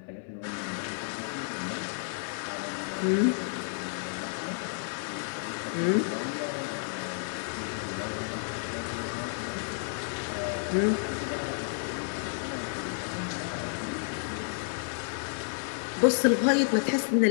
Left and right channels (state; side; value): silent; right; digital silence